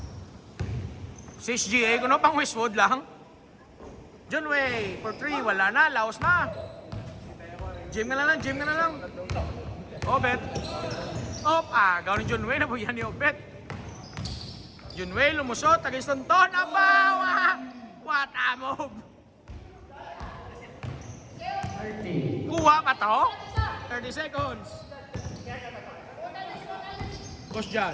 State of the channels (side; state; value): both; identical; correlation 1.00